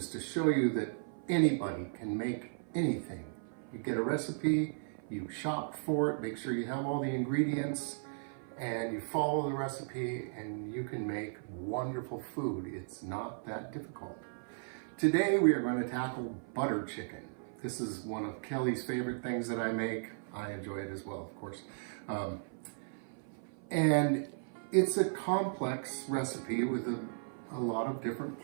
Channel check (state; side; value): silent; left; 54 dB below the other